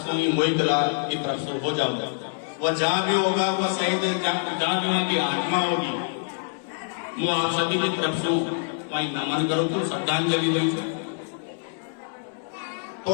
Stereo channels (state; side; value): silent; right; 61 dB below the other